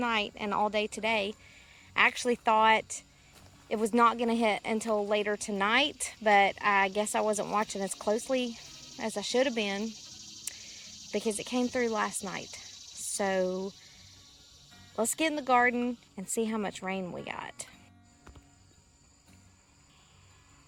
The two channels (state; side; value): identical; both; correlation 1.00